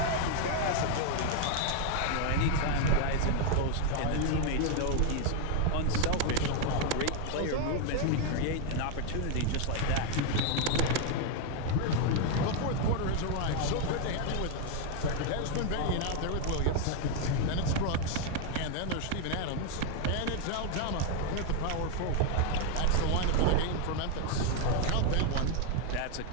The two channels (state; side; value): different; both; correlation 0.01